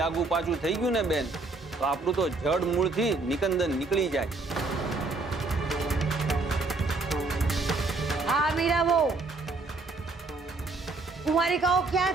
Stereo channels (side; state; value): left; quieter; 3.5 dB